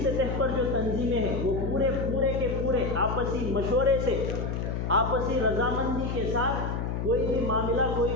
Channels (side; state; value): left; noise; hum, 2 dB below the sound